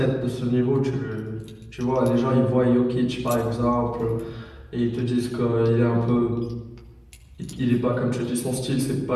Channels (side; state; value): both; identical; correlation 1.00